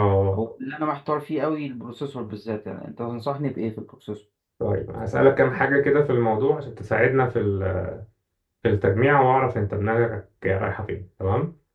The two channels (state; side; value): identical; both; correlation 1.00